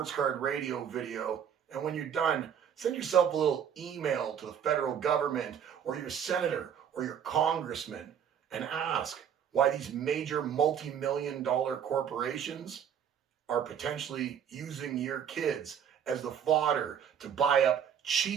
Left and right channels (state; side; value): quieter; left; 8.4 dB